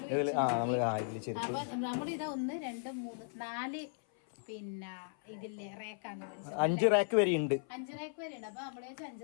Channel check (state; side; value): silent; right; 54 dB below the other